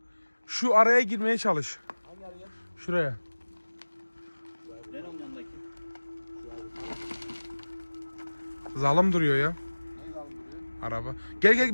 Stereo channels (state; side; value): inverted; both; correlation -1.00